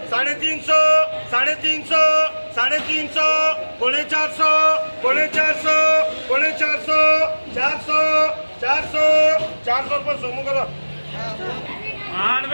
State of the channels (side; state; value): both; inverted; correlation -1.00